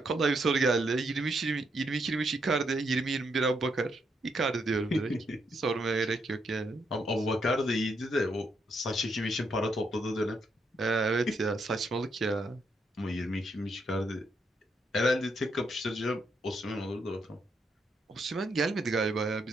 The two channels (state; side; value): normal; both; correlation 0.77